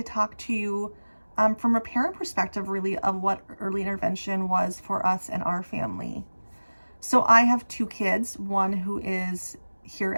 talk to you from a parent perspective, really, of what early intervention was for us and our family. So I have two kids, one who is here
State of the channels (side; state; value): both; inverted; correlation -1.00